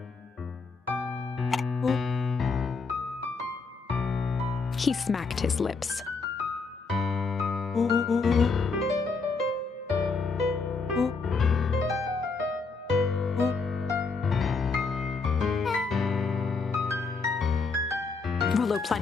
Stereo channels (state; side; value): quieter; right; 4.4 dB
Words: He smacked his lips. Rollo